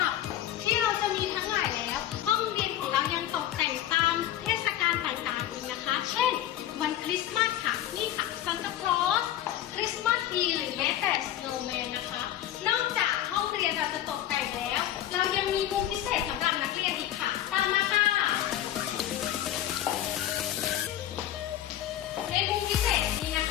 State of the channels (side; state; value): right; quieter; 12.3 dB